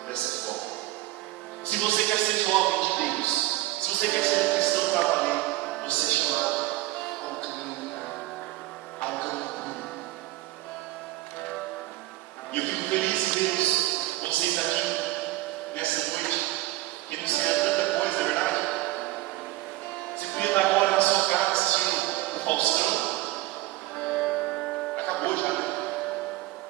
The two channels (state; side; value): quieter; left; 17.3 dB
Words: dessa forma. Se você quer ser jovem de Deus, se você quer ser um cristão para valer, você é chamado ao caminho puro. E eu fico feliz em ver vocês aqui nessa noite, que não sei tanta coisa, é verdade? Você podia estar agora na sua casa assistindo o Faustão. Acabou já, né?